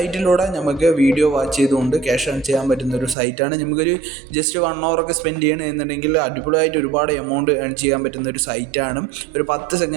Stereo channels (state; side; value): drops out; left; at 3.2 s